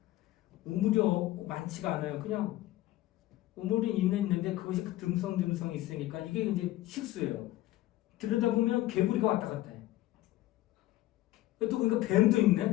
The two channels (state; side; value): quieter; right; 15.9 dB